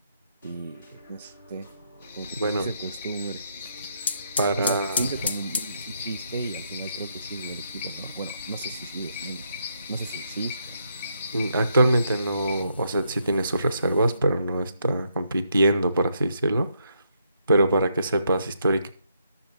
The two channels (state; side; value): inverted; both; correlation -0.76